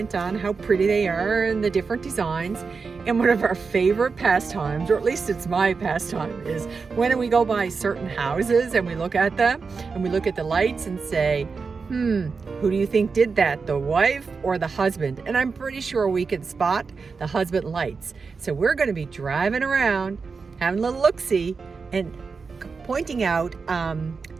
on how pretty they are and the different designs. And one of our favorite pastimes, or at least it's my pastime, is when we go by certain houses and we look at them and we look at the lights and say, who do you think did that, the wife or the husband? And I'm pretty sure we can spot the husband lights. So we're going to be driving around, having a little look-see, and pointing out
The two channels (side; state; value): left; quieter; 4.9 dB